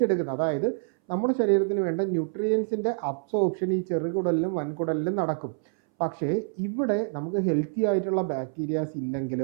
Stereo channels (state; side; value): silent; left; 60 dB below the other